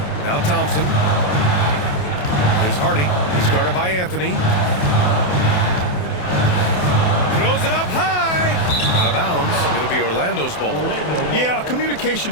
Now Thompson. Here's Hardy. He's guarded by Anthony. Throws it up high. Out of bounds. It'll be Orlando's ball. Yeah, a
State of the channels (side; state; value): right; late; 28 ms